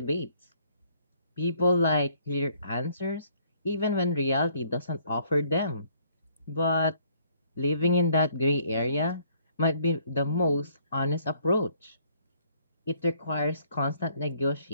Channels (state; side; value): inverted; both; correlation -0.63